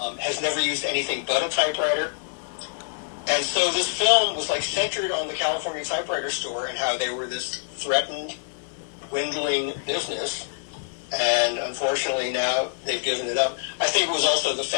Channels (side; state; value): right; silent; 59 dB below the other